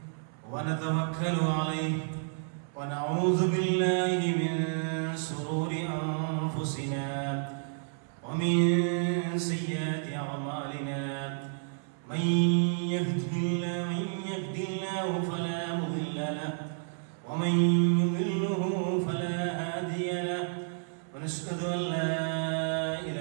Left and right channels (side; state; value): left; silent; 57 dB below the other